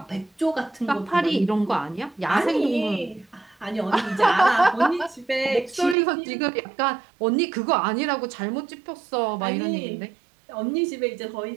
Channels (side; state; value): left; drops out; at 6.0 s